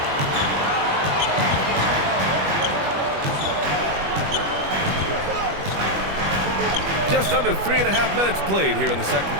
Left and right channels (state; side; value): late; left; 21 ms